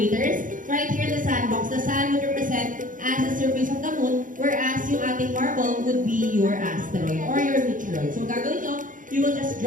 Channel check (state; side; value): late; left; 0.38 ms